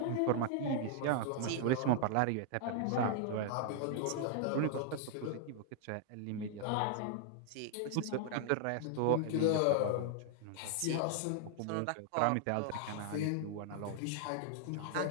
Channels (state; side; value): different; both; correlation 0.00